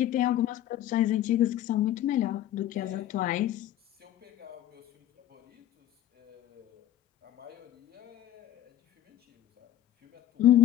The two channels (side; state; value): right; quieter; 12.4 dB